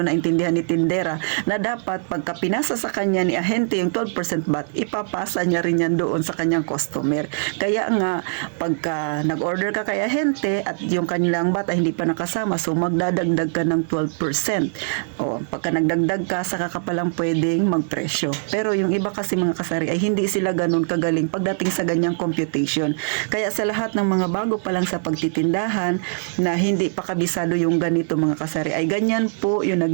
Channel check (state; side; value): silent; left; digital silence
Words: naintindihan ni tindera na dapat pagka pinasa sa kanya ni ahente yung 12% VAT, ipapasa niya rin yan doon sa kanyang customer. Kaya nga, pagka nag-order ka kay ahente at yung kanilang VAT ay hindi pa nakasama, so magdadagdag ka ng 12%. O, pagka nagdagdag ka, saka ka palang pwedeng magpresyo. Pero yung iba kasi mga kasari ay hindi sila ganun kagaling pagdating sa ganyang computation. Kaya sa lahat ng mga bago pa lang sa pagtitindahan na hindi pa kabisado yung ganito mga kasari, ay ganyan po yung